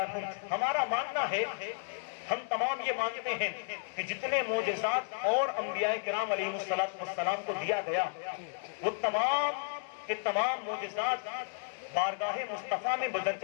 ہمارا ماننا ہے، ہم تمام یہ مانتے ہیں کہ جتنے معجزات اور انبیاء کرام علیہ السلام کو دیا گیا وہ تمام کے تمام معجزات بارگاہ مصطفیٰ میں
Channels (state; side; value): silent; right; digital silence